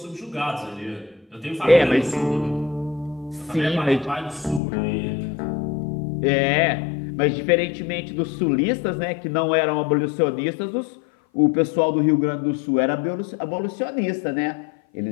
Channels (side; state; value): right; drops out; at 4.6 s